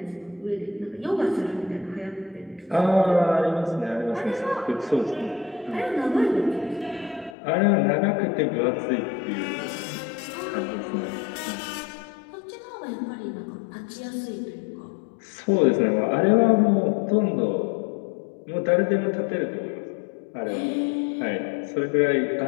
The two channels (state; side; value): drops out; right; at 7.4 s